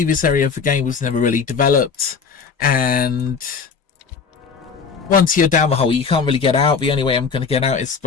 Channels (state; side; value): quieter; right; 5.7 dB